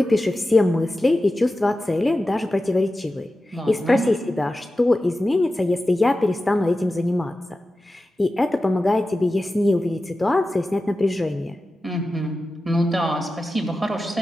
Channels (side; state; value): both; normal; correlation 0.93